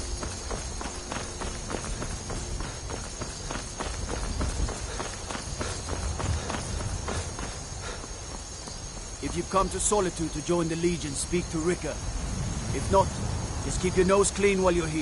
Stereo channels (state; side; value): identical; both; correlation 1.00